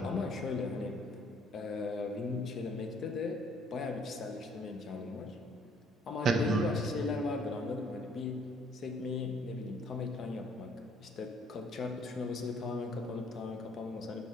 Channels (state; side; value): normal; both; correlation 0.62